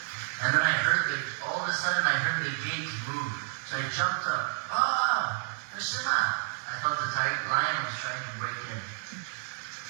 And then all of a sudden I heard the gate move. So I jumped up. Ah, Krishna! I thought the lion was trying to break in.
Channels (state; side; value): silent; left; 56 dB below the other